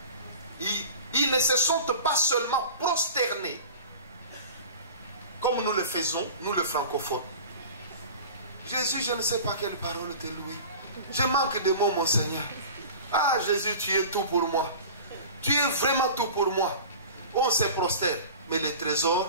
Ils ne se sont pas seulement prosternés, comme nous le faisons, nous les francophones. Jésus, je ne sais pas quelle parole te louer. Je manque de mots, mon Seigneur. Ah, Jésus, tu es tout pour moi. Tu es vraiment tout pour moi. On se prosterne, mais le trésor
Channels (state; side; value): inverted; both; correlation -0.38